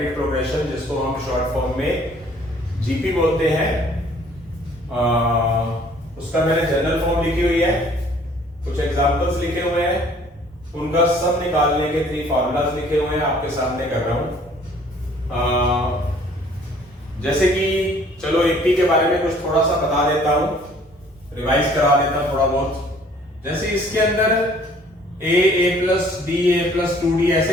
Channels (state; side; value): normal; both; correlation 0.56